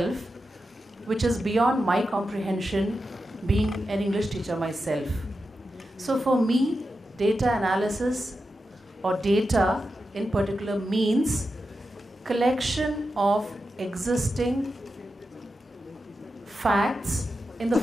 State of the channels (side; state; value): both; normal; correlation 0.90